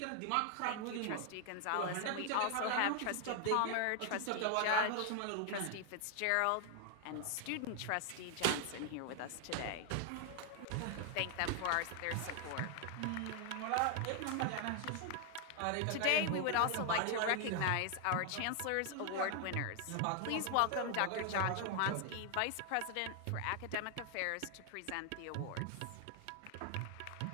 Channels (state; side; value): different; both; correlation 0.00